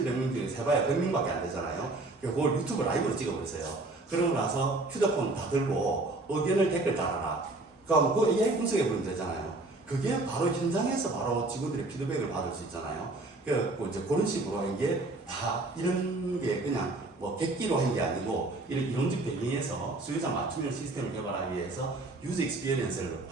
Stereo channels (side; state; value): left; quieter; 3.0 dB